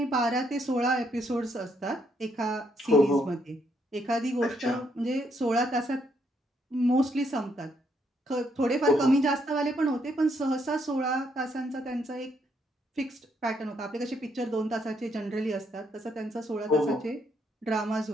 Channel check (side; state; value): both; normal; correlation 0.74